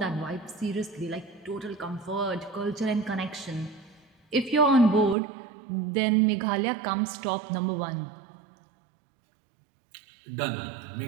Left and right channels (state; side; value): drops out; left; at 5.2 s